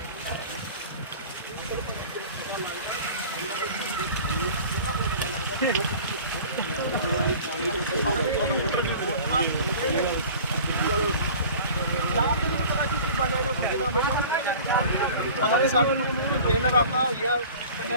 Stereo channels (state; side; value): inverted; both; correlation -0.43